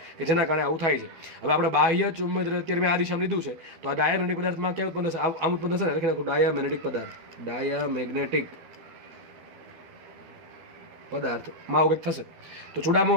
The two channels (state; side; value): late; left; 13 ms